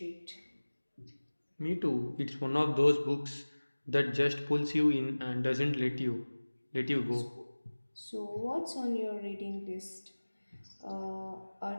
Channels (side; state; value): both; inverted; correlation -1.00